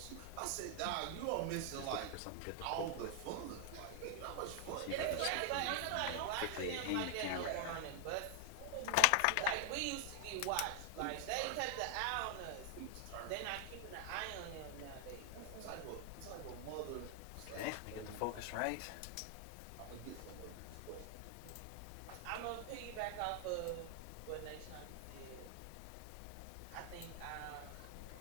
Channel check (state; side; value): different; both; correlation 0.00